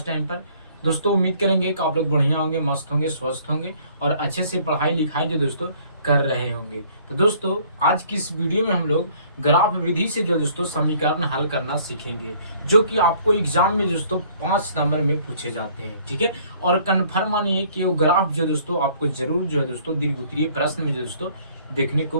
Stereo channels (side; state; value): both; inverted; correlation -0.58